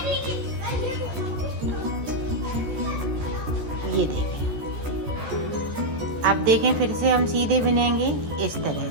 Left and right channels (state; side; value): late; left; 14 ms